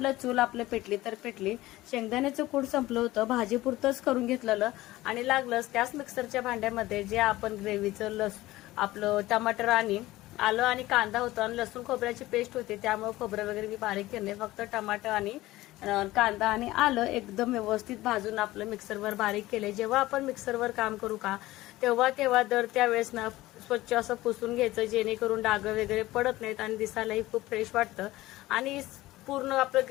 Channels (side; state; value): right; quieter; 17.4 dB